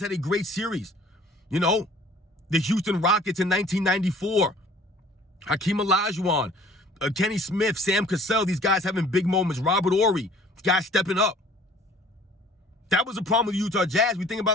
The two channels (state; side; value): normal; both; correlation 0.52